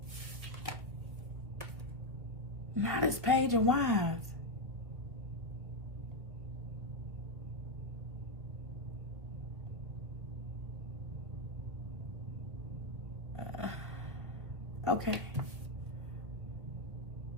Not this page of wines. Okay.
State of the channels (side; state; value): left; late; 1.6 ms